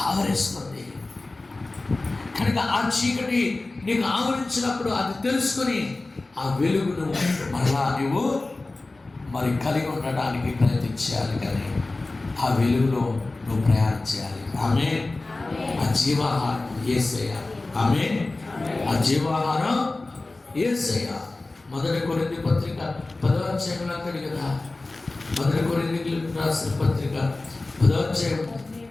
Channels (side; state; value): right; quieter; 3.2 dB